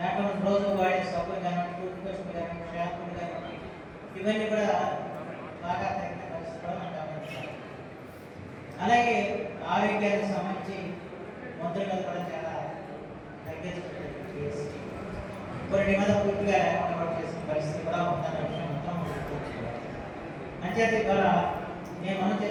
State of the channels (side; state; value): both; identical; correlation 1.00